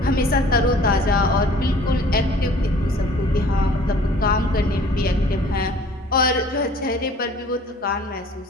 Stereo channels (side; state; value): both; normal; correlation 0.52